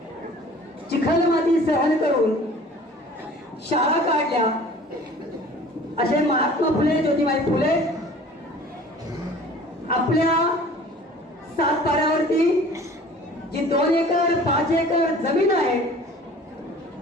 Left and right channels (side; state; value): both; normal; correlation 0.47